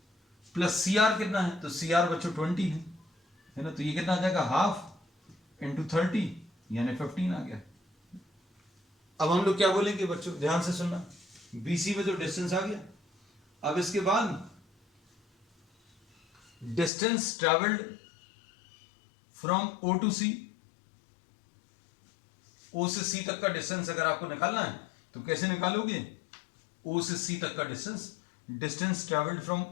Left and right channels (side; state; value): right; drops out; at 16.9 s